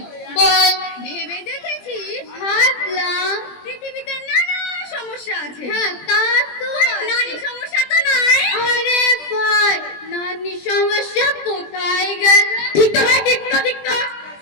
বল। ভেবে দেখেছিস? ভাবলাম পৃথিবীতে নানা সমস্যা আছে। হ্যাঁ তা তো নারী সমস্যা তো নাই। আরে ভাই নারী সমস্যা কোথায় গেল? ঠিক তো ভাই, ঠিক তো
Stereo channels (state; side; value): late; right; 20 ms